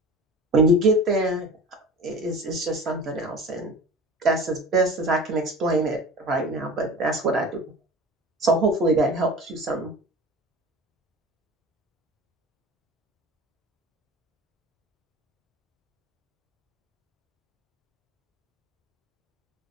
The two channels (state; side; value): normal; both; correlation 0.37